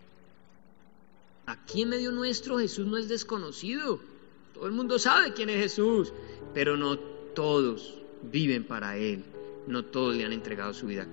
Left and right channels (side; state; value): right; silent; digital silence